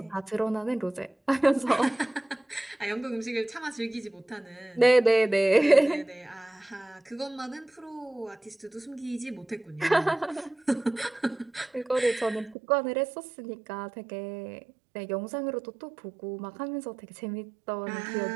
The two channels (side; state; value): left; drops out; at 12.6 s